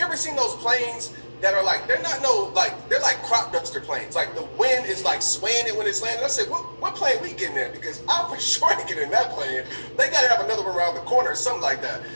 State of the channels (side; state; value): both; inverted; correlation -1.00